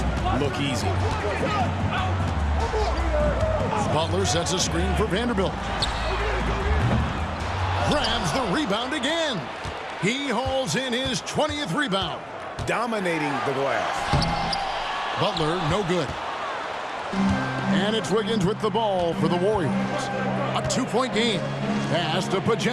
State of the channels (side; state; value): both; identical; correlation 1.00